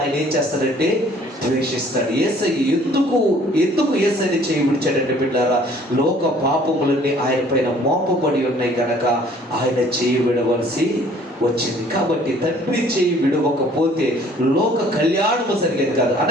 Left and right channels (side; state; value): both; normal; correlation 0.56